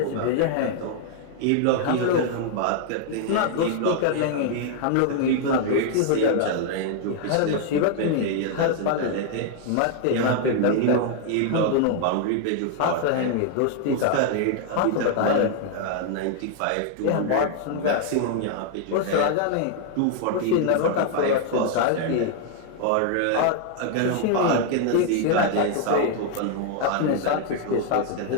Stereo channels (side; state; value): both; different; correlation 0.00